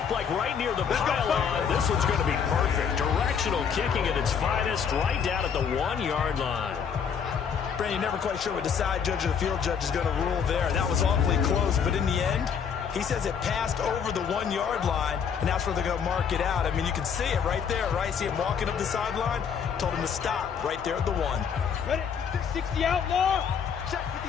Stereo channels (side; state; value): right; quieter; 7.1 dB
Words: like right near the pylon. This one's going to be perfect. Directional kicking at its finest, right down at the 1-yard line. Brandon, you're never quite sure what the side judge or the field judge is going to rule there. That was awfully close, but in the end, he says it passed over the 1-yard line, and that's where they're going to mark it out. I mean, you can see it right there, right? See him walking up the sideline? Told him to stop right there at the 1. Ready? 60 outlaw. Check